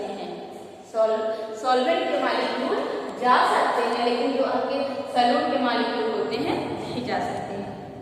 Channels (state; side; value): identical; both; correlation 1.00